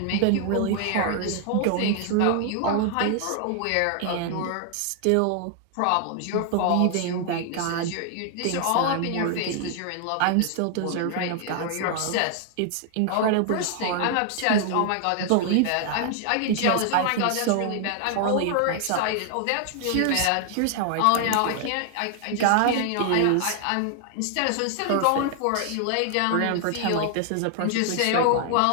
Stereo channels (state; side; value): different; both; correlation 0.00